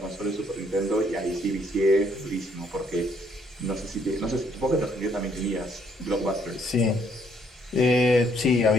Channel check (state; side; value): normal; both; correlation 0.68